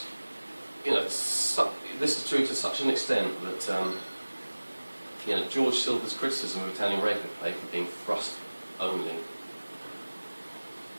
This is true to such an extent that George Silver's criticism of Italian rapier play for being thrust only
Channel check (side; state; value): both; inverted; correlation -1.00